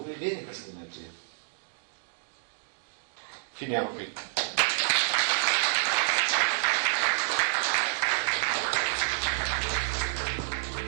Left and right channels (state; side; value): silent; left; digital silence